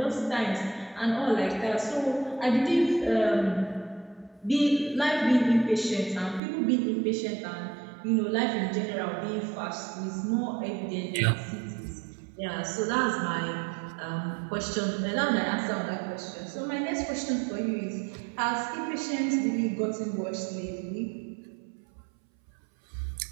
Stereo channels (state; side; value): drops out; left; at 6.4 s